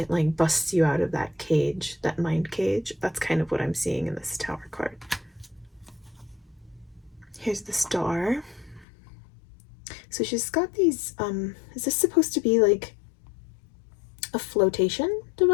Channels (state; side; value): drops out; right; at 8.8 s